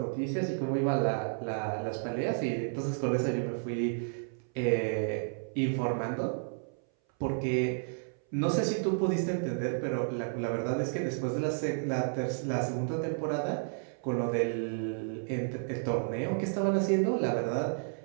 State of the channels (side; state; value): left; silent; 57 dB below the other